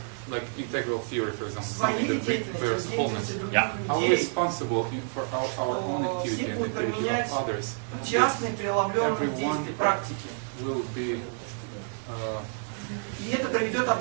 like integral theory, for example, something that bears wholeness, are we responsible for our own activity and the activity of others? частные преломленные действия, практики. Will be И это приведет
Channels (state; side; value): silent; left; 59 dB below the other